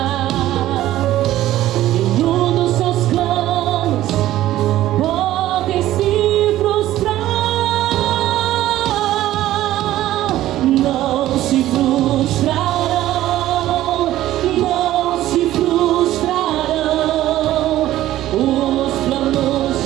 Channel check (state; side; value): quieter; left; 14.3 dB